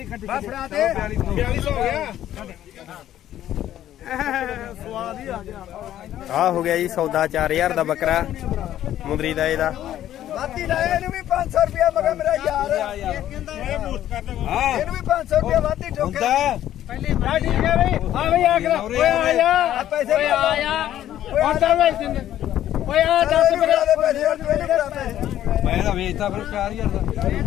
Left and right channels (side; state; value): right; quieter; 12.1 dB